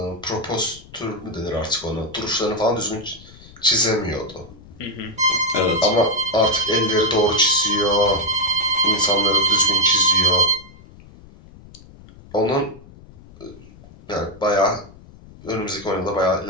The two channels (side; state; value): left; noise; rumble, 21 dB below the sound